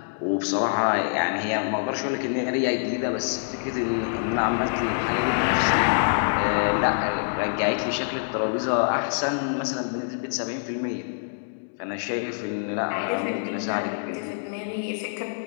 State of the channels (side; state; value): right; silent; digital silence